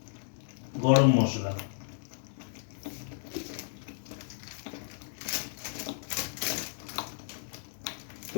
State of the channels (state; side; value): silent; right; digital silence